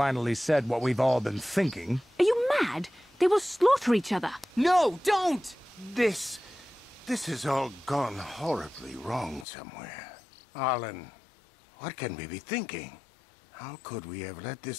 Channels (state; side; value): drops out; right; at 9.5 s